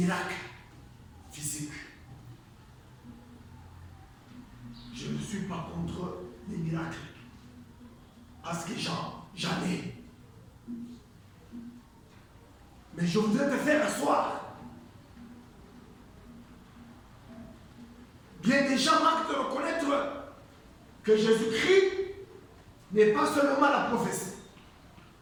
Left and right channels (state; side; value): identical; both; correlation 1.00